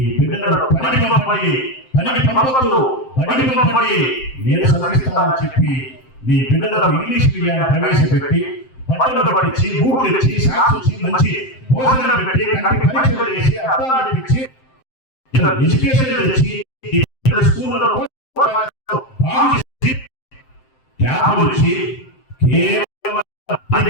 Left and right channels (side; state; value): right; late; 7.7 ms